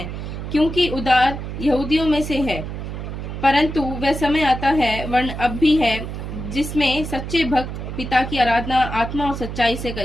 क्योंकि उद्धार यहूदियों में से है। परंतु वह समय आता है, वर्ण अब भी है, जिसमें सच्चे भक्त पिता की आराधना आत्मा और सच्चाई से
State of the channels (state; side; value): noise; right; hum, 7 dB below the sound